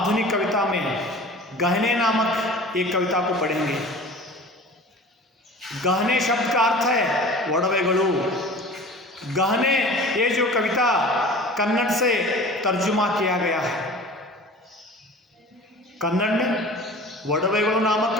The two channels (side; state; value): both; normal; correlation 0.41